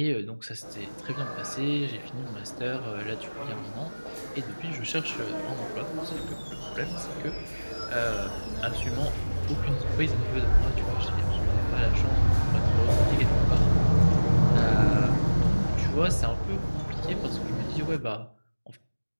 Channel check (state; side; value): inverted; both; correlation -1.00